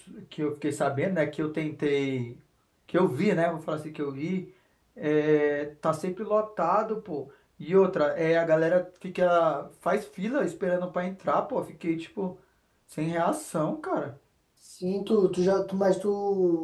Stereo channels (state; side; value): identical; both; correlation 1.00